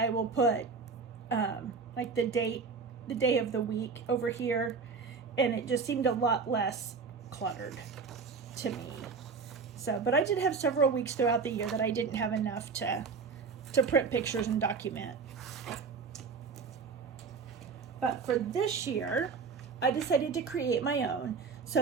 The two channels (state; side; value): quieter; left; 5.1 dB